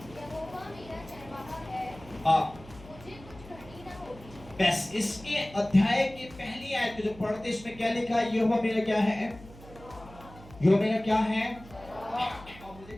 बस इसके अध्याय की पहली आयत जो पढ़ते इसमें क्या लिखा है? यहोवा मेरा क्या है? यहोवा मेरा क्या है? और मुझे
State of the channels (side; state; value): right; noise; hum, 19 dB below the sound